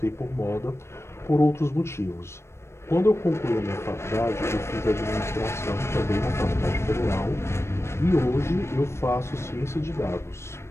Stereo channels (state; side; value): late; right; 0.13 ms